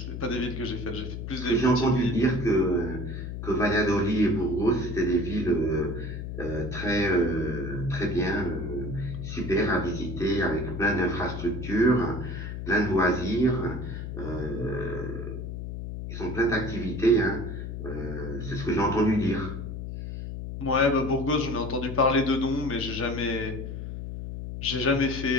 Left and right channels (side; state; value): left; noise; hum, 7 dB below the sound